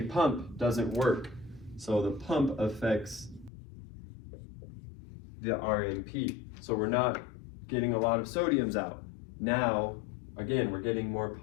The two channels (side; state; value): right; drops out; at 3.5 s